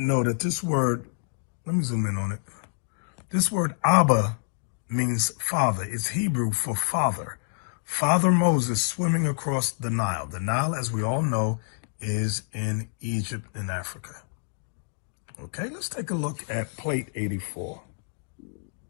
that this word, let me zoom in on it. This word Abba means father. It's Hebrew for father. Father Moses swimming across the Nile. The Nile, as we all know, is in Egypt and Africa. Okay, let's take a look at plate 84.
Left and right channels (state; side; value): silent; right; digital silence